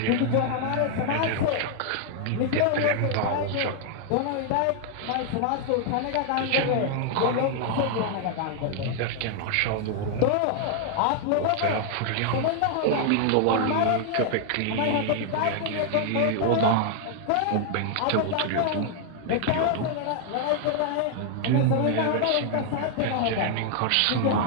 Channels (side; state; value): both; different; correlation 0.00